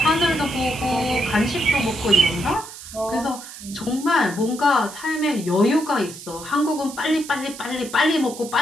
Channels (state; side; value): noise; right; hiss, 14 dB below the sound